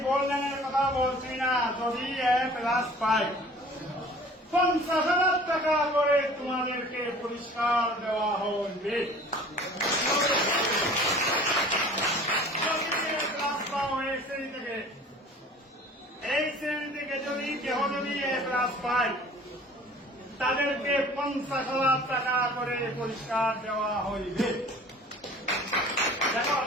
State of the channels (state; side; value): normal; both; correlation 0.47